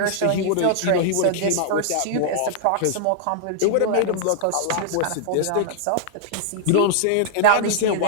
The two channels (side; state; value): both; different; correlation -0.01